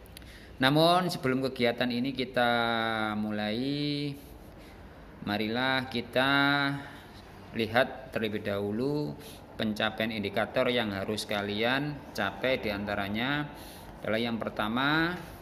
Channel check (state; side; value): identical; both; correlation 1.00